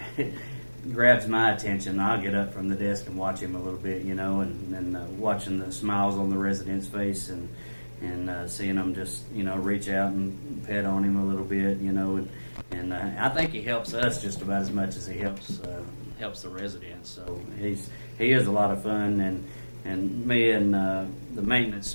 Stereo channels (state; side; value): inverted; both; correlation -1.00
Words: grabs my attention. I'll get up from the desk and watch him a little bit. And watching the smiles on the resident's face and seeing them just reach out and pet on him a little bit. And I think he helps us just about as much as he helps the residents. So he is a lot of fun, and me and the maintenance